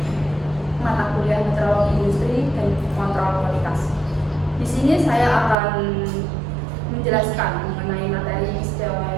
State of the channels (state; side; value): drops out; left; at 5.6 s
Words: mata kuliah meteorologi industri dan kontrol kualitas. Di sini saya akan menjelaskan mengenai materi